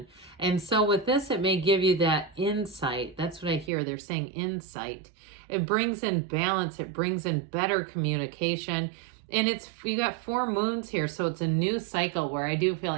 And so with this, it may give you that insight. That's what I hear. They're saying insight. It brings in balance. It brings in better communication. And you got 4 moons here, so it's a new cycle where I do feel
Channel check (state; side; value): drops out; left; at 3.7 s